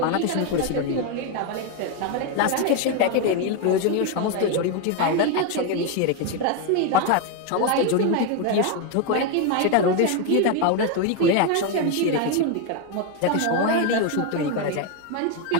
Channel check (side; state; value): both; different; correlation 0.02